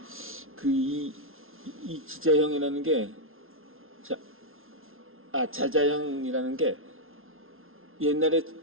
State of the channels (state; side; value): late; left; 0.61 ms